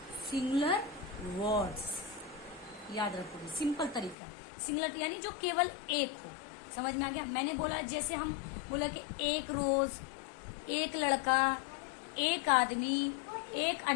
सिंगुलर वर्ड्स याद रखोगे, सिंपल तरीका। सिंगुलर यानी जो केवल एक हो। समझ में आ गया? मैंने बोला, जैसे हम बोला कि एक रोज, एक लड़का, एक आदमी, एक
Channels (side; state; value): right; drops out; at 4.2 s